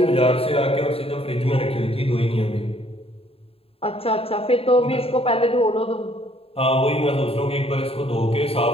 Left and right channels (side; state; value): right; late; 0.28 ms